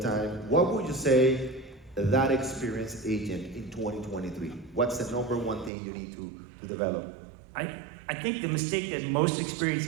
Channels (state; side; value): drops out; left; at 5.7 s